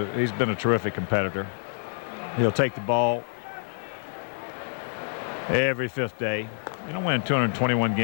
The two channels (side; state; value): right; silent; 59 dB below the other